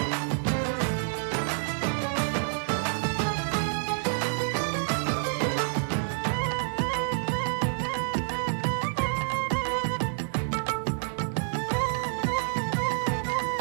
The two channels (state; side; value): silent; left; digital silence